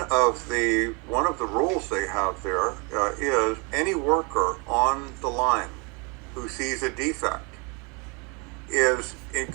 of the rules they have there is any worker on the line who sees a defect is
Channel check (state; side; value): quieter; left; 31.2 dB